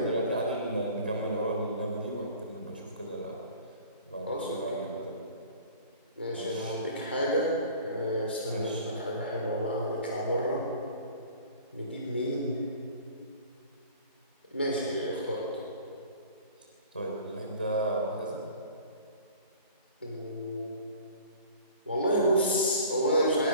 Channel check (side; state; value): both; inverted; correlation -0.45